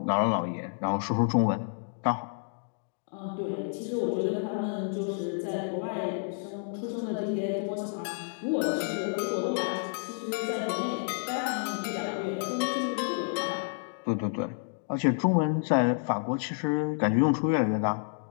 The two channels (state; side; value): silent; right; digital silence